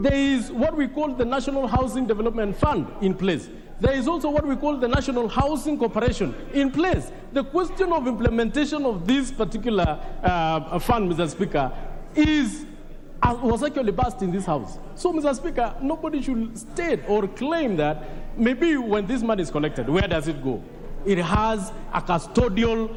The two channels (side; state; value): both; identical; correlation 1.00